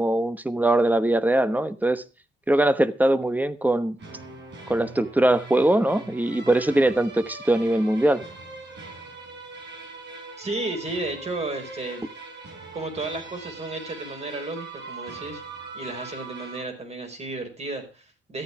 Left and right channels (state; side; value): normal; both; correlation 0.86